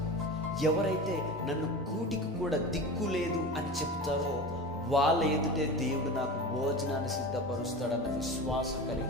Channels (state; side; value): normal; both; correlation 0.30